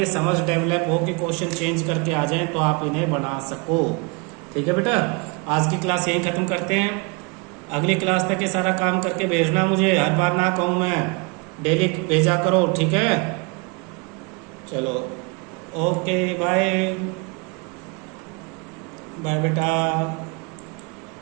समझ डेवलप हो कि क्वेश्चन चेंज करके आ जाएं तो आप इन्हें बना सको। ठीक है बेटा, आज की क्लास यहीं खत्म करते हैं। अगली क्लास तक ये सारा काम करके भेजना मुझे, हर बार ना कहूँ मैं, डेली भेजा करो, ठीक है। चलो ओके बाय बाय बेटा,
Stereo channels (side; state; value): left; quieter; 31.1 dB